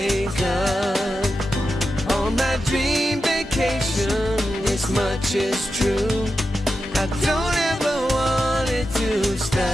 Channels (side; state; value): both; normal; correlation 0.90